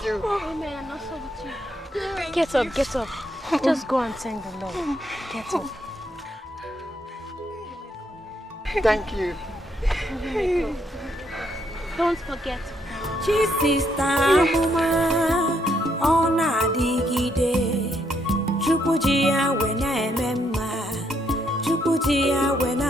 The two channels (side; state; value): both; normal; correlation 0.74